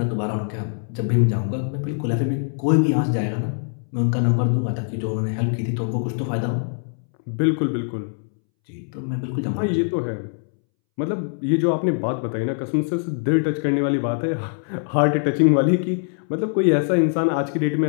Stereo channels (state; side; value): silent; right; 64 dB below the other